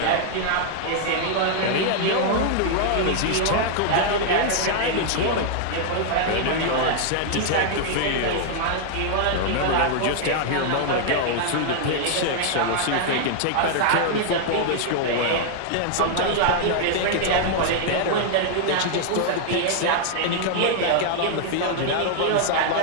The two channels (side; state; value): both; different; correlation 0.00